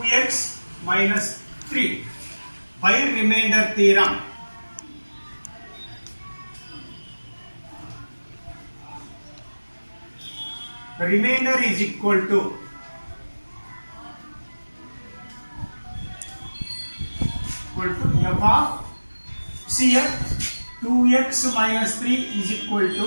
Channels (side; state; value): both; inverted; correlation -1.00